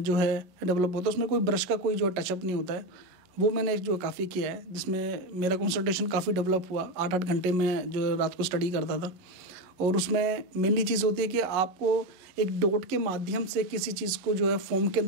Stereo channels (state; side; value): late; left; 11 ms